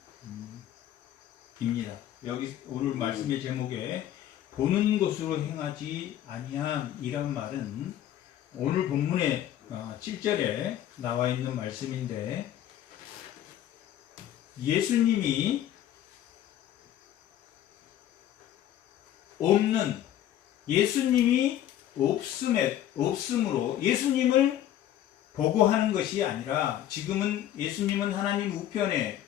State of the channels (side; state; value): right; quieter; 11.8 dB